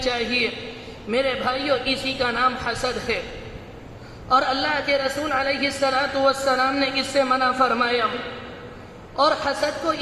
چاہیے۔ میرے بھائیو، اسی کا نام حسد ہے، اور اللہ کے رسول علیہ السلام نے اس سے منع فرمایا۔ اور حسد کو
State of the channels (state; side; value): identical; both; correlation 1.00